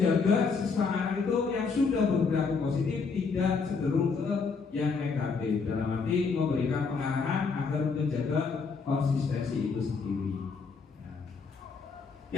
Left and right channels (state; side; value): quieter; right; 5.0 dB